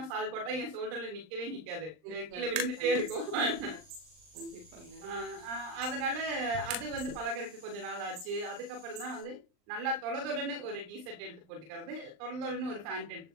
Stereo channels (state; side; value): late; left; 39 ms